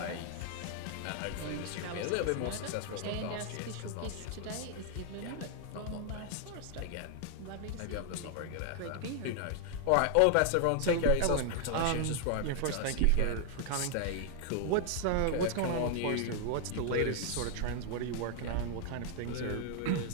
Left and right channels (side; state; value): both; different; correlation 0.00